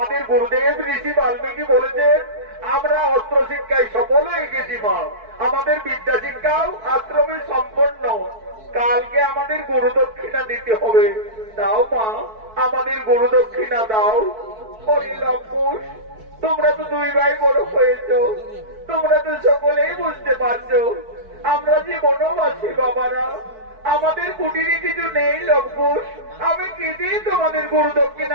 গুরুদেব ঋষি বাল্মীকি বলেছেন আমরা অস্ত্র শিক্ষায় সফল হয়ে গেছি মা। আমাদের বিদ্যা শিক্ষাও আশ্রমে সম্পন্ন। কালকে আমাদের গুরু দক্ষিণা দিতে হবে। দাও মা, আমাদের গুরু দক্ষিণা দাও। লম্পুর, তোমরা তো দুই ভাই বড় হয়েছ, তোমরা তো সকলেই বুঝতে পারছো আমরা যে বনবাসী বাবারা, আমাদের কুটিরে কিছু নেই লম্পুর। আমি কি দিয়ে তোমাদের গুরু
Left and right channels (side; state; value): left; late; 4.6 ms